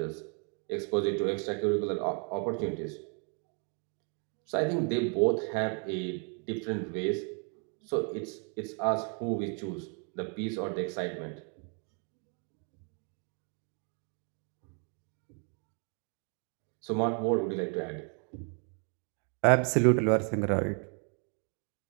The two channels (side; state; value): left; quieter; 39.4 dB